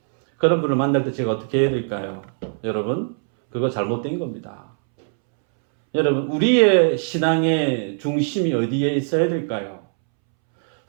그런 분을 만날 때 제가 어떻게 해야 될까요? 여러분, 그거 잘못된 겁니다. 여러분, 우리의 신앙의 중심이 어디에 있어야 될까요?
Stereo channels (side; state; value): left; silent; 65 dB below the other